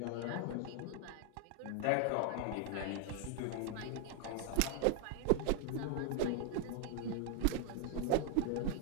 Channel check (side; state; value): both; different; correlation 0.00